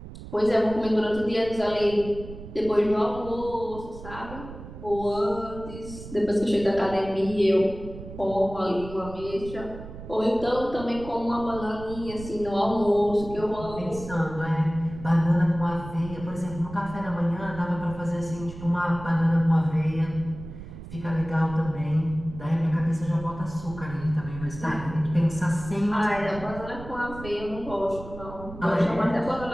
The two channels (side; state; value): right; noise; rumble, 13 dB below the sound